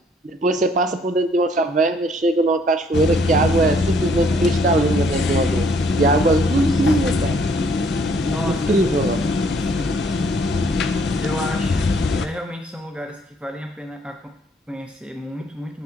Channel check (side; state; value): both; normal; correlation 0.64